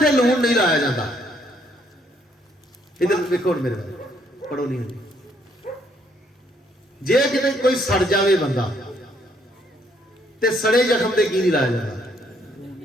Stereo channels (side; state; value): both; normal; correlation 0.69